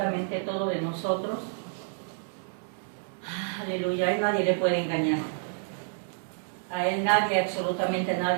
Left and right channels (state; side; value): silent; left; digital silence